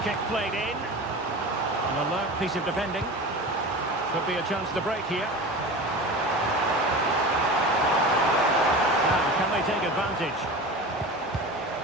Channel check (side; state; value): both; normal; correlation 0.32